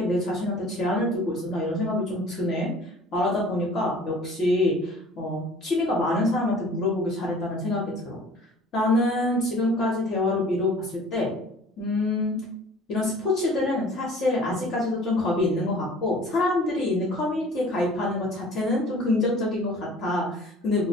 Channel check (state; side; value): normal; both; correlation 0.48